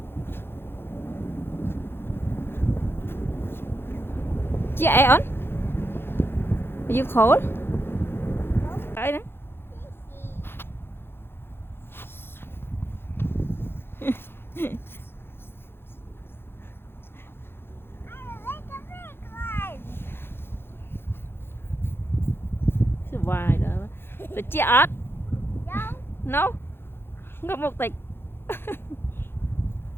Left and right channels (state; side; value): late; right; 0.11 ms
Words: Chị on? Are you cold? Đấy đấy. Vài đó. Được chị ớt? No. Không có một tịch.